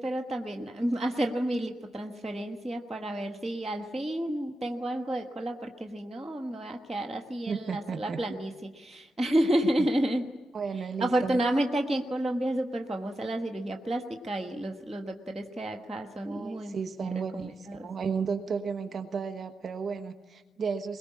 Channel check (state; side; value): normal; both; correlation 0.89